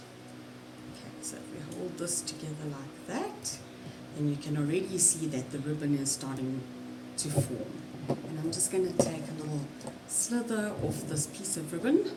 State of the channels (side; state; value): both; identical; correlation 1.00